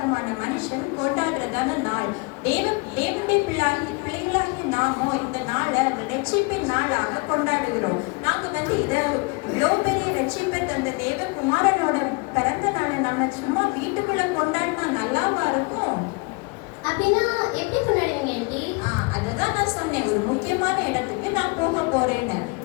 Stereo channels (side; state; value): right; quieter; 28.5 dB